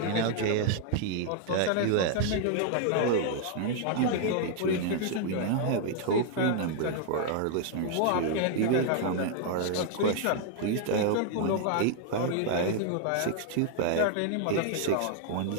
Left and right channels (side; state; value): both; different; correlation 0.00